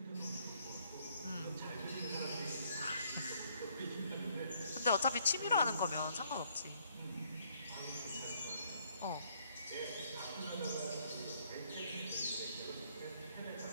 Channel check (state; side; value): inverted; both; correlation -0.67